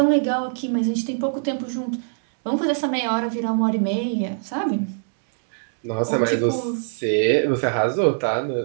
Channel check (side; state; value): left; silent; digital silence